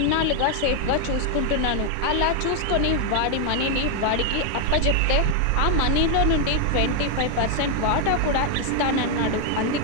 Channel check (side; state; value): both; different; correlation 0.00